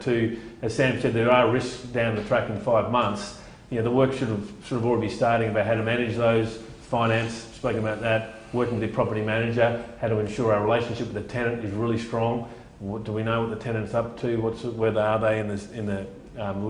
To, as Sam said, there are risks down the track in 5 months. The work should have already be starting about how to manage those, finance, spoken about that, working with the property manager, how to ensure our relationship with the tenant is really strong. What do we know what the tenant's up to? Where are they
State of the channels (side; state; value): both; identical; correlation 1.00